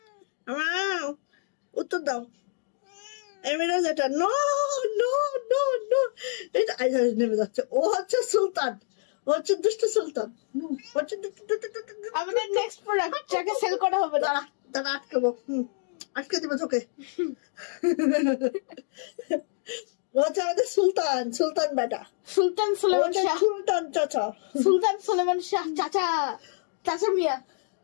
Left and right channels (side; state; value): right; silent; digital silence